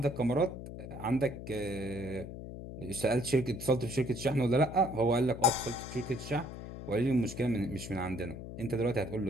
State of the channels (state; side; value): noise; left; hum, 10 dB below the sound